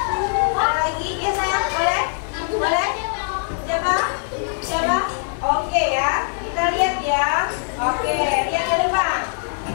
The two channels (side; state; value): right; silent; 65 dB below the other